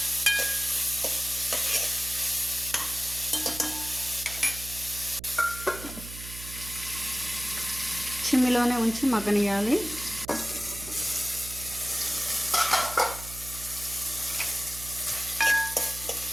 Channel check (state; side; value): noise; right; hum, 12 dB below the sound